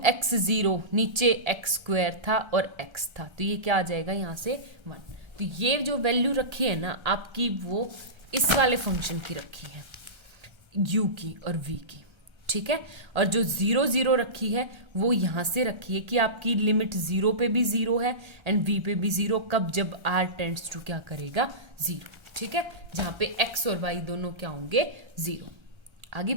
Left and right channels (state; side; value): late; left; 1.3 ms